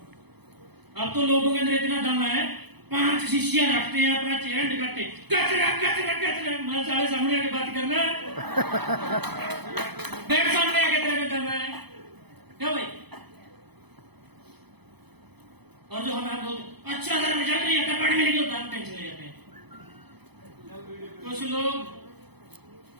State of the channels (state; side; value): late; left; 0.98 ms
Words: अब तो लोगों के अंदर इतना दम है, 5 शीशियां रखते हैं, अपना चेहरा दिखाते, कचरा कचरा कचरा। मैं सारे सामने आके बात करना, बैठ